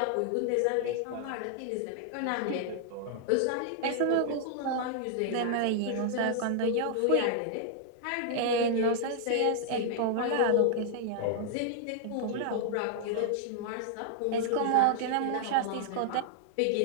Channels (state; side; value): different; both; correlation -0.01